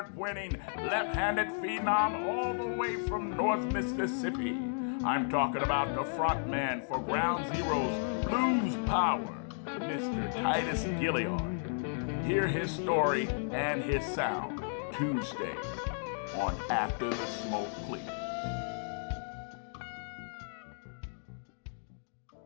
winning left-handed phenom all the way from North Mississippi. I'm talking about the frontman for Ground Zero's Blues Power, Mr. Titus Gillard. Hear his story and his sound Tuesday on After the Smoke Clears.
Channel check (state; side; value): silent; right; digital silence